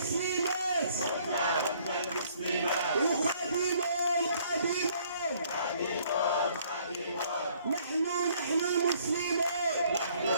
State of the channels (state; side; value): inverted; both; correlation -0.62